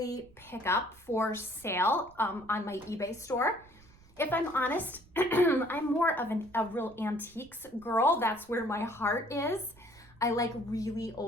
pick up for sale on my eBay store. If I'm honest, I'm more of a real antiques girl. That's where my heart is. I like really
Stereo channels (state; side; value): noise; right; rumble, 26 dB below the sound